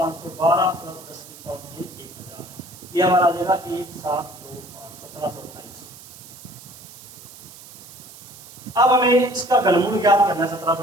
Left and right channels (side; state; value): right; noise; hiss, 18 dB below the sound